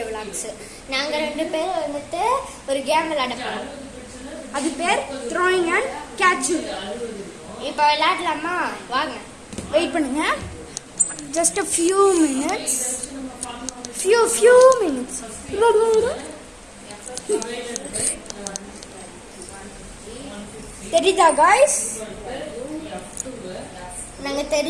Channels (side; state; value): both; identical; correlation 1.00